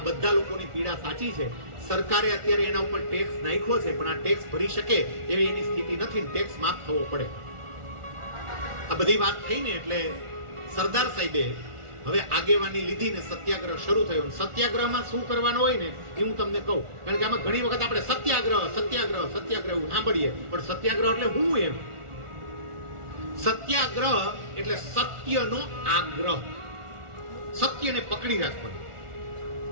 બધા લોકોની પીડા સાચી છે. સરકારે અત્યારે એના ઉપર ટેક્સ નાખ્યો છે, પણ આ ટેક્સ ભરી શકે એવી એની સ્થિતિ નથી, ટેક્સ માફ થવો પડે. આ બધી વાત થઈને એટલે સરદાર સાહેબે હવે આગેવાની લીધી ને સત્યાગ્રહ શરૂ થયો. સત્યાગ્રહમાં શું કરવાનું હોય ને એ હું તમને કહું, કારણ કે આમાં ઘણી વખત આપણે સત્યાગ્રહ સાંભળીએ, પણ સત્યાગ્રહ એટલે હું એમ. સત્યાગ્રહ એટલે સત્યનો આગ્રહ, સત્યને પકડી રાખવાનું.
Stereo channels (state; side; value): late; left; 1.4 ms